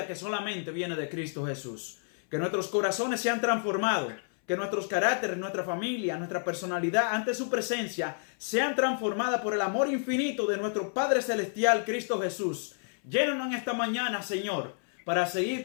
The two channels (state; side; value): silent; right; 58 dB below the other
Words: que solamente viene de Cristo Jesús. Que nuestros corazones sean transformados. Que nuestros caracteres, nuestra familia, nuestra personalidad ante su presencia sean transformadas por el amor infinito de nuestro Padre Celestial, Cristo Jesús. Llénanos en esta mañana, Señor, para